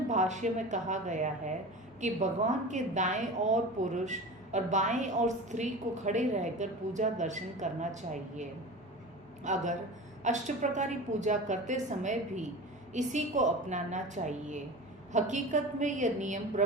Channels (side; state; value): both; normal; correlation 0.33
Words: भाष्य में कहा गया है कि भगवान के दाएं ओर पुरुष और बाएं ओर स्त्री को खड़े रहकर पूजा दर्शन करना चाहिए। अगर अष्टप्रकारी पूजा करते समय भी इसी को अपनाना चाहिए। हकीकत में यह नियम